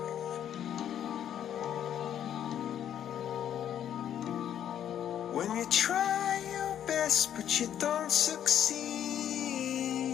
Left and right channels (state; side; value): quieter; right; 10.0 dB